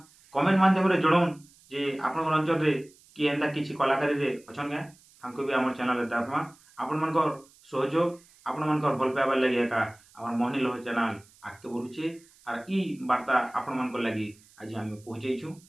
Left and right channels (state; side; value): noise; right; hiss, 28 dB below the sound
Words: କମେଣ୍ଟ ମାଧ୍ୟମରେ ଜଣାଉନ୍ ଯେ ଆପଣଙ୍କର ଅଞ୍ଚଳରେ କି ଏନ୍ତା କିଛି କଳାକାରୀରେ ଅଛନ୍ କେଁ ତାଙ୍କୁ ବି ଆମର ଚ୍ୟାନେଲ୍ରେ ଦେଖମା। ଆପଣମାନଙ୍କର ସହଯୋଗ ଆପଣମାନଙ୍କର ଭଲ ପାଇବାର ଲାଗି ଏକା ଆମର ମୋହନୀଲ ଚ୍ୟାନେଲ୍ ଆଗକେ ବଢ଼ୁଛେ ଆର୍ ଇ ବାର୍ତ୍ତା ଆପଣମାନଙ୍କର ଲାଗି ଆଜି ଆମେ ପହଞ୍ଚେଇଛୁ।